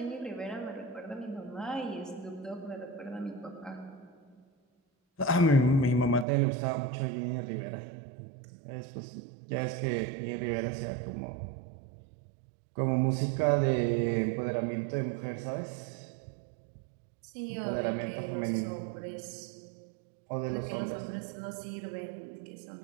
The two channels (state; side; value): drops out; left; at 6.2 s